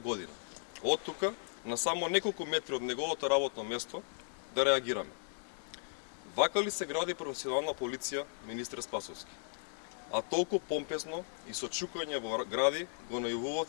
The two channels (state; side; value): silent; right; digital silence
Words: од тука на само неколку метри од неговото работно место, да реагираме. Вака ли се гради професионална полиција, министер Спасовски? А толку помпезно и со чукање во гради го